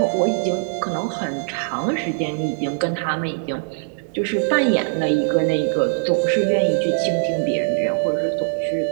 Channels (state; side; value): silent; left; digital silence